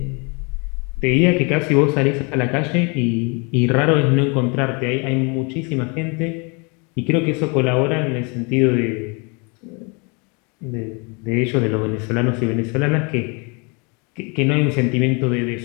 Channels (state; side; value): quieter; right; 32.2 dB